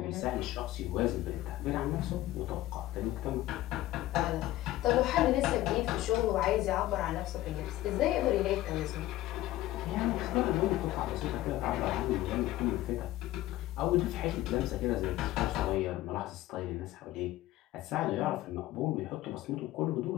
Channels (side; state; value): right; quieter; 15.7 dB